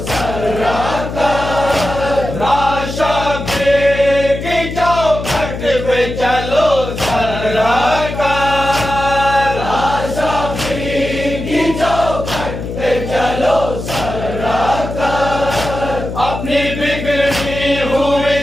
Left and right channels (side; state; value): left; noise; hum, 7 dB below the sound